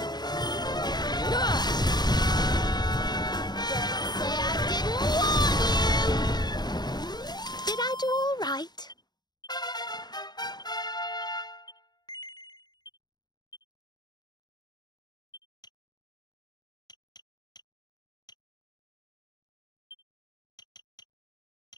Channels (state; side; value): late; right; 0.20 ms